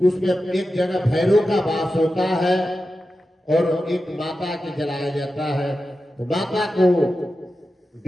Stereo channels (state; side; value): normal; both; correlation 0.92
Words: उसमें एक जगह भैरव का वास होता है और एक माता के जलाया जाता है। तो माता को